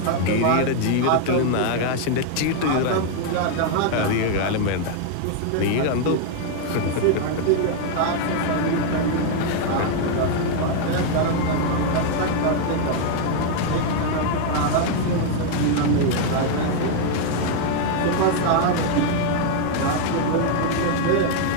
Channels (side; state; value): both; different; correlation 0.00